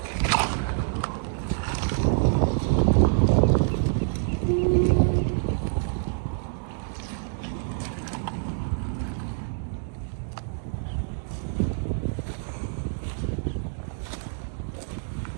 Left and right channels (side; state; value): left; silent; digital silence